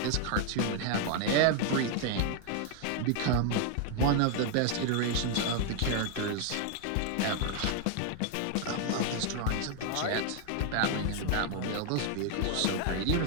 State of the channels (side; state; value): both; different; correlation 0.00